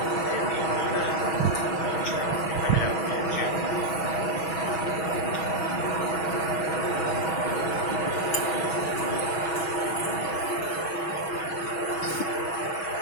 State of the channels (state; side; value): late; right; 6.3 ms